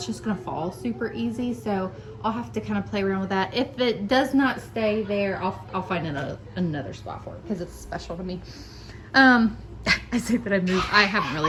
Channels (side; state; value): both; identical; correlation 1.00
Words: just gonna fall super easy. So I'll have to kind of play around with that. If it does not stay there, I'll find another spot for it because it's special to me. I say that I moved. I haven't